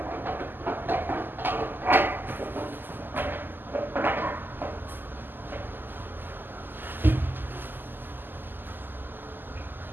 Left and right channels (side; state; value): left; late; 0.092 ms